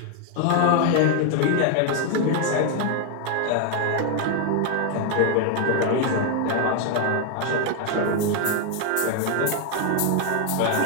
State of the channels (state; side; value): different; both; correlation 0.00